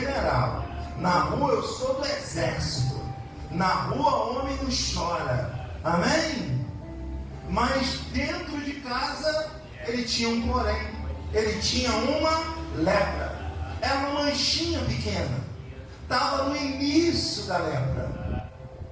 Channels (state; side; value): identical; both; correlation 1.00